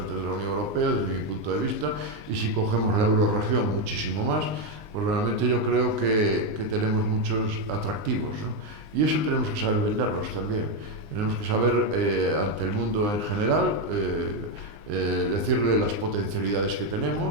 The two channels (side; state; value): left; late; 19 ms